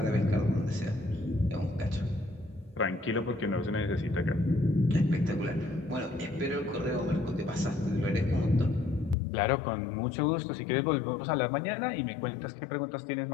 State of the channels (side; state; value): right; drops out; at 9.2 s